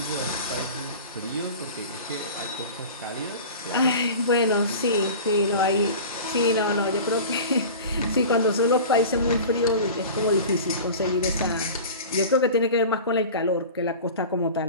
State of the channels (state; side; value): inverted; both; correlation -0.36